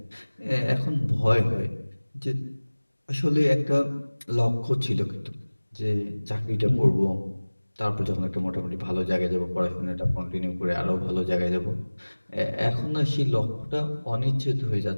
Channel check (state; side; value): inverted; both; correlation -1.00